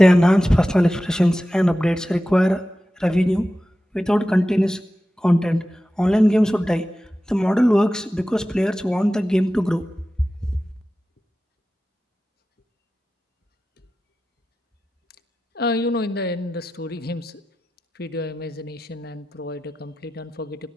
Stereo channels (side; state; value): both; normal; correlation 0.94